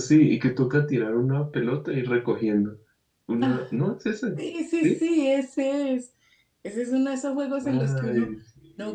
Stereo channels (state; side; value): identical; both; correlation 1.00